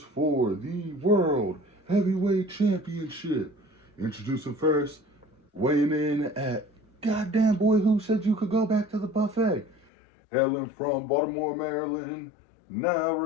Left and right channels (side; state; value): right; drops out; at 9.9 s